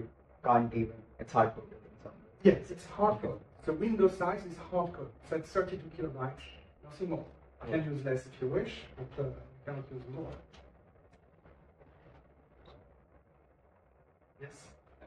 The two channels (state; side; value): identical; both; correlation 1.00